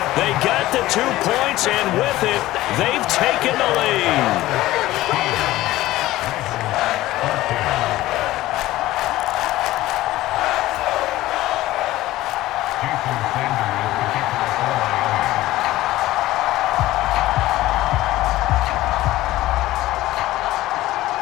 They got the 2 points, and with it, they've taken the lead.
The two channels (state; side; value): quieter; right; 16.4 dB